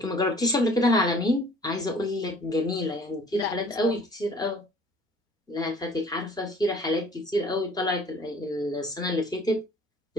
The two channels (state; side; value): normal; both; correlation 0.52